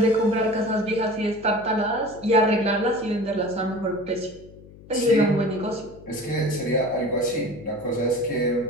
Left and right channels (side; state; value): left; noise; hum, 20 dB below the sound